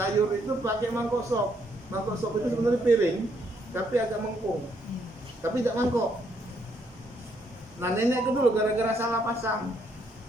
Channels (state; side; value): normal; both; correlation 0.72